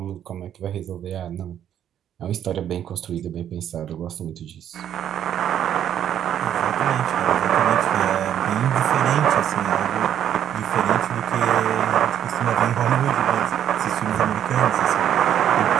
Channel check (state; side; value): quieter; left; 10.1 dB